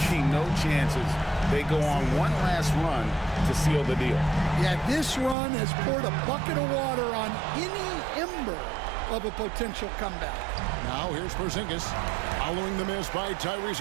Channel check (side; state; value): left; drops out; at 5.4 s